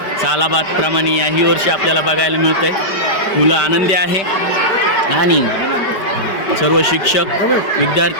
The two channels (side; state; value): right; late; 5.1 ms